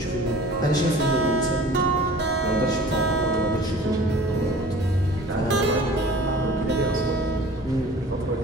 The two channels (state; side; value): normal; both; correlation 0.44